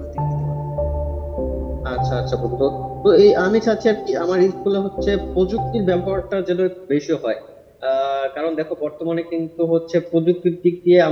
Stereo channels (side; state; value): both; identical; correlation 1.00